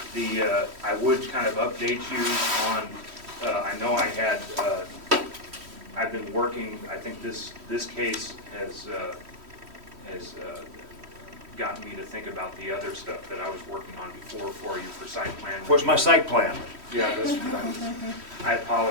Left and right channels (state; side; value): late; left; 3.1 ms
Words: I would kind of update you on, I know I've been working, I think this case has gotten me to think about the other stuff that I was working on before for you for site plan. Where's my site plan? Yeah, I